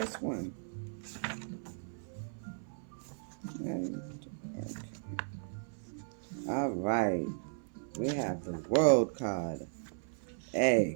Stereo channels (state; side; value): silent; left; 54 dB below the other